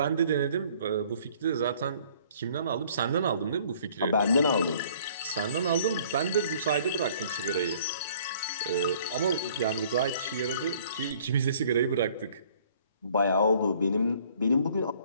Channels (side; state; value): both; inverted; correlation -0.57